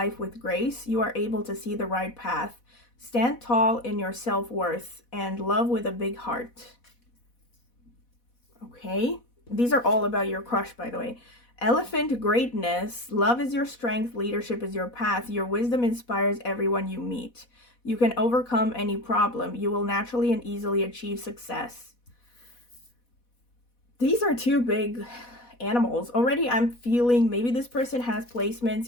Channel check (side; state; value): right; late; 4.1 ms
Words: with grace, you are able to see the right path. Stand tall in your self-worth and love with a big heart. Okay, these are all about your crush, by the way. Elephant, greatness, love is your strength, leadership is your path, your wisdom inspires everyone you meet. You can overcome any problem, you will naturally and easily achieve success. These are 2 big animals. Already I'm feeling maybe this person has